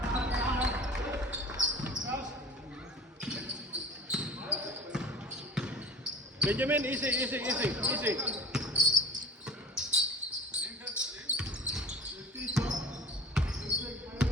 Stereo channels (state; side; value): normal; both; correlation 0.37